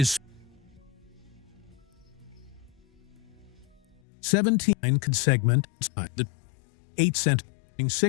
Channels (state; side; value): drops out; right; at 4.0 s